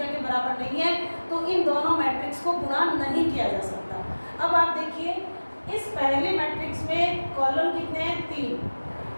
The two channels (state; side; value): inverted; both; correlation -1.00